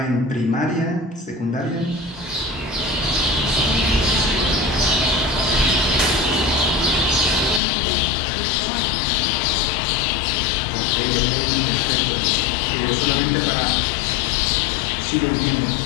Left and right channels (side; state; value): right; drops out; at 7.6 s